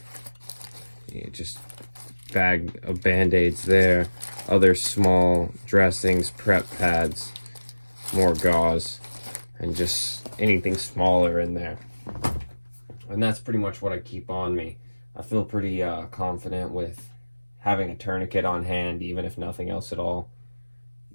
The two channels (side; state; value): both; inverted; correlation -1.00